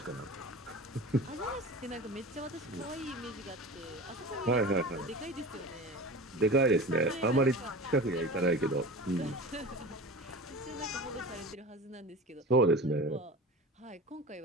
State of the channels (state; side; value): normal; both; correlation 0.33